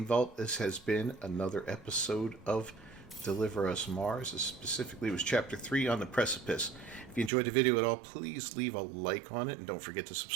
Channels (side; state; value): left; drops out; at 7.3 s